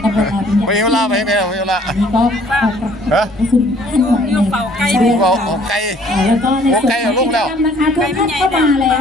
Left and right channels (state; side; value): normal; both; correlation 0.58